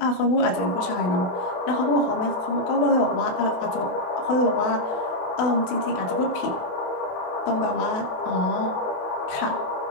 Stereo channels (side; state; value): right; late; 28 ms